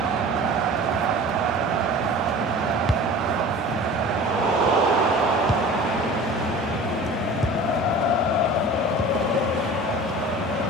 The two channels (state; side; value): normal; both; correlation 0.39